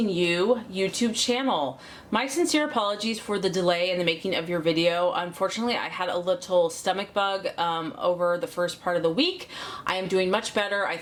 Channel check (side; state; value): both; identical; correlation 1.00